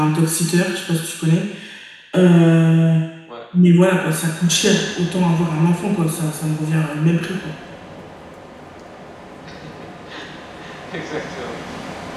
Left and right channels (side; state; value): both; identical; correlation 1.00